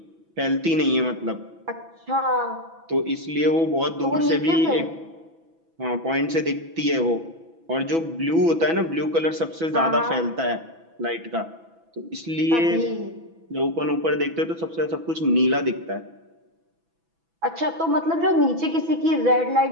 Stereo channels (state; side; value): late; left; 6.0 ms